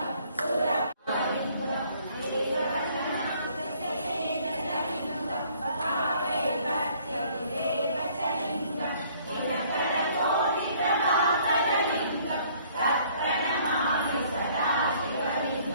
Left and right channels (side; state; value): both; inverted; correlation -0.60